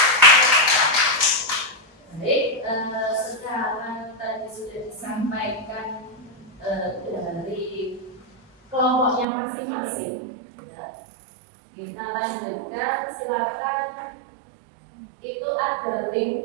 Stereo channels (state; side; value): drops out; left; at 9.2 s